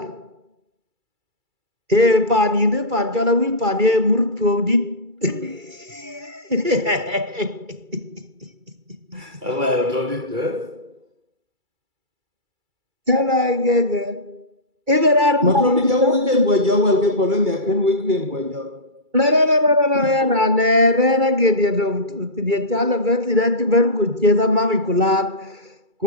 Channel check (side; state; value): left; late; 2.3 ms